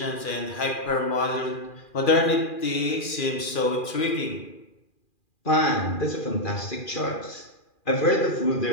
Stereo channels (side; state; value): right; late; 2.4 ms